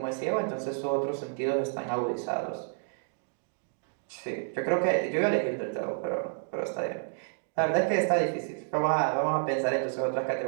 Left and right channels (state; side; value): silent; left; digital silence